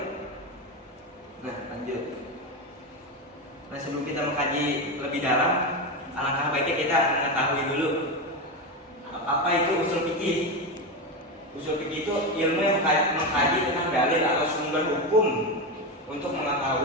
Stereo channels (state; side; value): normal; both; correlation 0.15